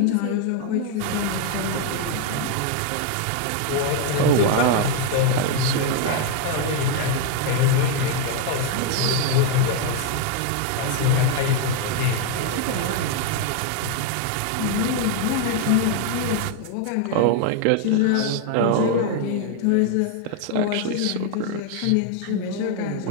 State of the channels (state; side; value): different; both; correlation 0.00